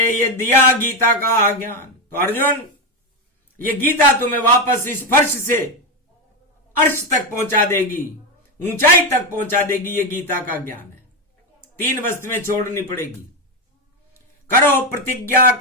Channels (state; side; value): normal; both; correlation 0.11